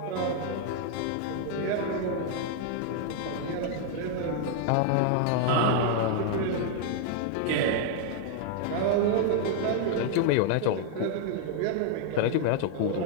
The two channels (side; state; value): both; different; correlation 0.00